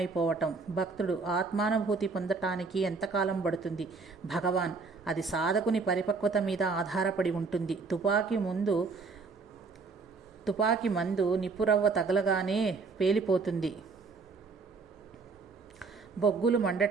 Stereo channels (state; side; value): quieter; left; 4.4 dB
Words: భక్తుడు ఆత్మానుభూతి పొందటానికి ఎంతకాలం పడుతుంది? భగవాన్ అది సాధకుని పరిపక్వత మీద ఆధారపడి ఉంటుంది. తుపాకీ మందు నిప్పురవ్వ తగలగానే పేలిపోతుంది. బొగ్గులు